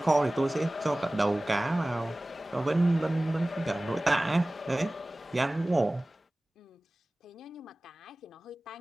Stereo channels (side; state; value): both; normal; correlation 0.98